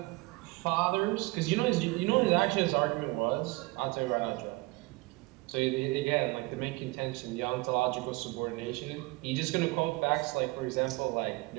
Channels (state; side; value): quieter; left; 24.0 dB